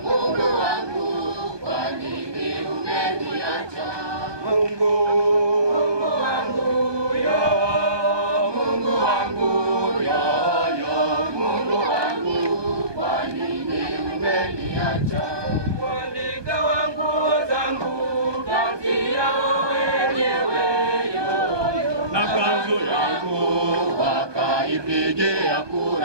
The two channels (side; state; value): left; late; 1.2 ms